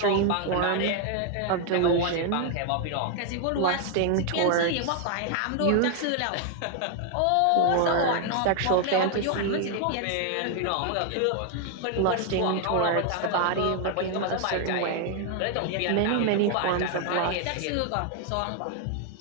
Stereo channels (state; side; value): different; both; correlation 0.00